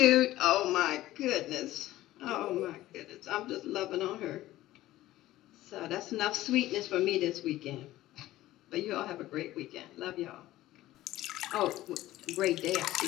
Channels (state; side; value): quieter; right; 15.6 dB